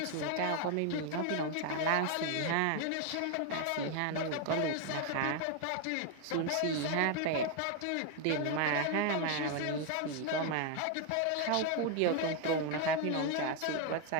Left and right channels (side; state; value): both; different; correlation 0.01